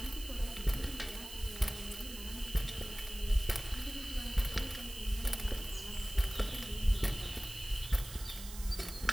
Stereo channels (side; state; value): right; noise; hiss, 12 dB below the sound